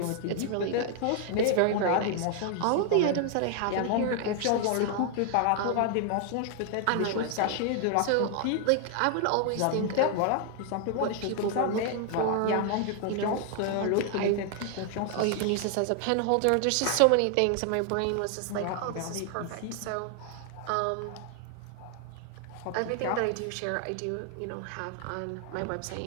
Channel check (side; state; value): both; different; correlation 0.00